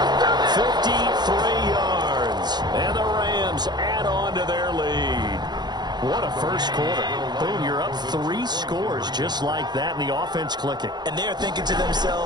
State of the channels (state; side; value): late; left; 0.21 ms